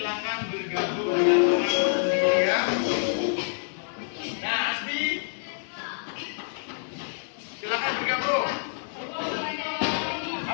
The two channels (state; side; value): silent; right; digital silence